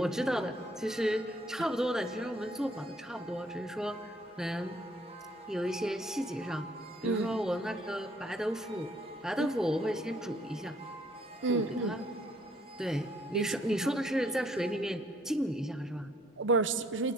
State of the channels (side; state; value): both; normal; correlation 0.64